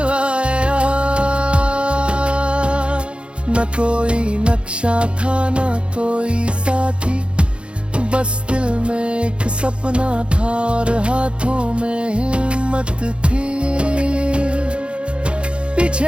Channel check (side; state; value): left; late; 0.057 ms